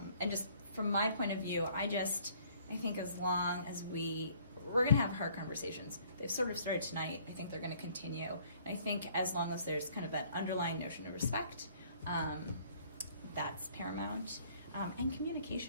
just from my point of view, I think as long as we're going to have hard conversations. They've sort of started tonight. I think they're going to continue. And I think as long as there's kind of that underlying notion of respect, that's paramount. And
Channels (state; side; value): inverted; both; correlation -0.59